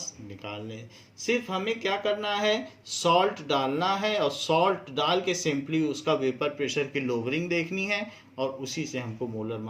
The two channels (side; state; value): both; identical; correlation 1.00